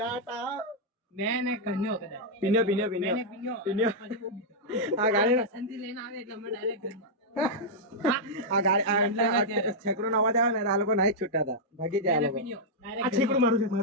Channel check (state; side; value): normal; both; correlation -0.06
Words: મેં ને કન્યો કદાચ. પિન્યો પિન્યો પિન્યો મેને પિન્યો. પિન્યો આ ગાડી બસંતી લઈને આવે એટલે અમે ડાયરેક્ટ ઘરમાં. આ ગાડી આ છેકડો નો અવાજ આવે ને આ લોકો નાઈ છૂટતા હતા ભાગી જાય આ લોકો પિન્યો. આ છેકડું મારું છે,